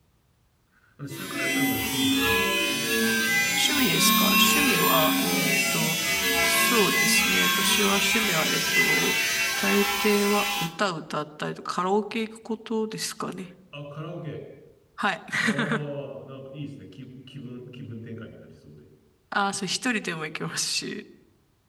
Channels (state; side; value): identical; both; correlation 1.00